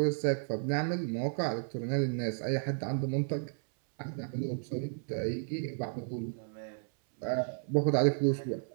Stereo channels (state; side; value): silent; left; 56 dB below the other